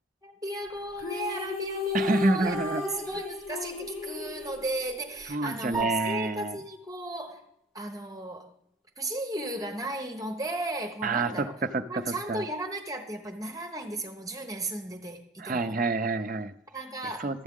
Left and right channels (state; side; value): normal; both; correlation 0.50